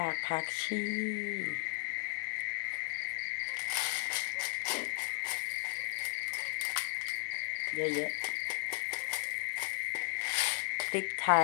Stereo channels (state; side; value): quieter; right; 33.6 dB